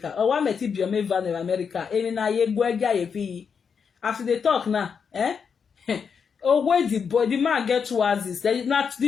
Or what met it be a van in America? After they talk now, oh, where the man get 2 houses. Not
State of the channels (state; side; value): quieter; right; 6.4 dB